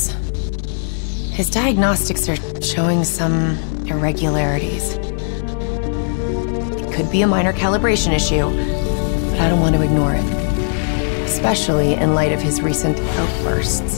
His diagnostics are showing some irregularities. It could be a minor calibration issue, but I don't want to ignore it. Especially in light of his recent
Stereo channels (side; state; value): right; silent; 67 dB below the other